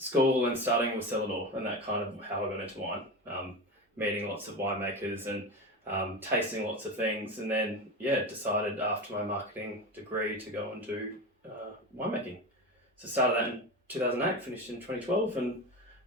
and studying was cellar, and that kind of how I got into wine. Meeting lots of winemakers and tasting lots of things, and then decided after my marketing degree to go and do winemaking. So started that in 2008, finished in 2012, and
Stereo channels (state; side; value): normal; both; correlation 0.23